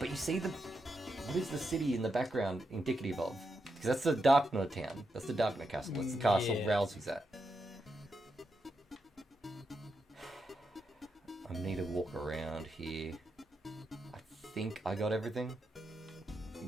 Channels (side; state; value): both; normal; correlation 0.84